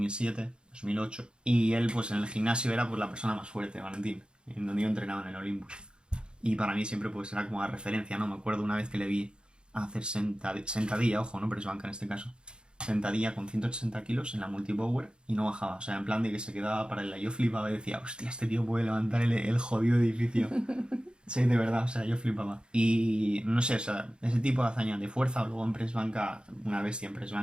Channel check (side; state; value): left; late; 0.051 ms